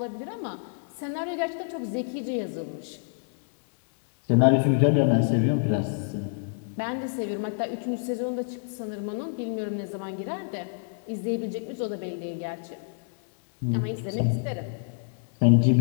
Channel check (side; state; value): right; silent; digital silence